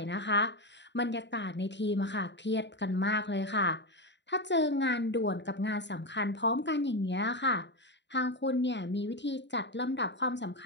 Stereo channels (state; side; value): late; right; 0.52 ms